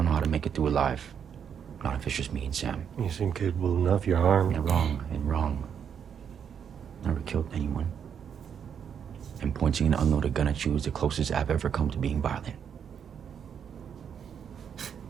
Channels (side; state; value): left; quieter; 7.8 dB